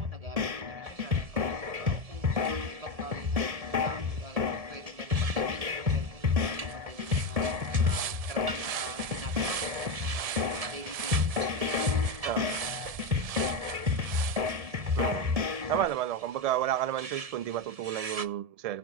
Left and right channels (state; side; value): late; left; 1.7 ms